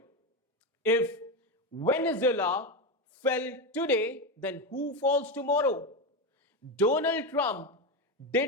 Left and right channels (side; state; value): both; normal; correlation 0.14